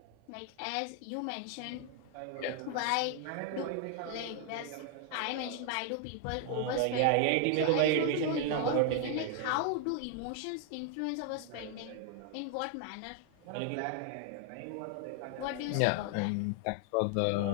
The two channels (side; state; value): both; different; correlation 0.00